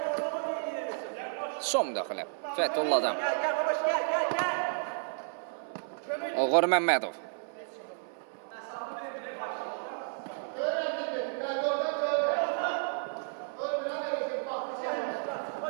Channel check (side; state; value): left; silent; 56 dB below the other